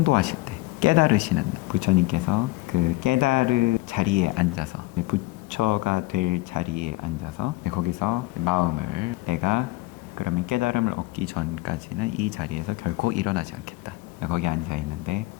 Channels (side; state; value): right; quieter; 19.4 dB